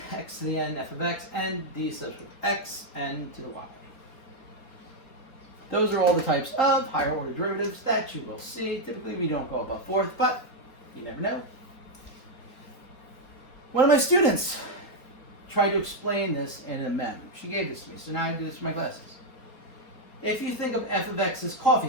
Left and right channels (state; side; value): late; right; 3.7 ms